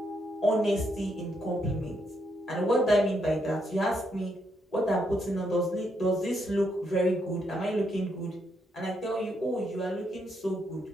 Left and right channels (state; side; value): normal; both; correlation 0.77